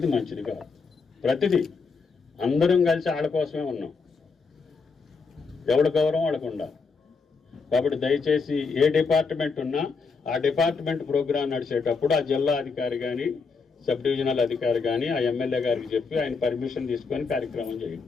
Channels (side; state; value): right; quieter; 4.8 dB